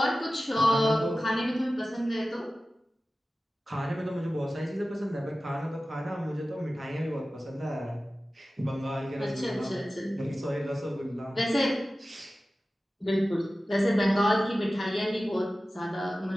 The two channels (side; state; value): both; normal; correlation 0.96